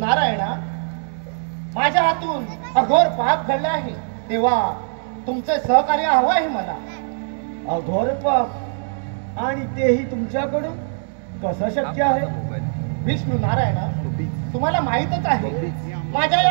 माझ्या हातून अघोर पाप घडले आहे, तेव्हा तुमचे सहकार्य हवं आहे मला. अघोर पाप आणि तेही तुमच्याकडून कसं शक्य आहे? विष्णू नारायणा, तुम्हाला माहीतच आहे माझ्या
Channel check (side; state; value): left; silent; digital silence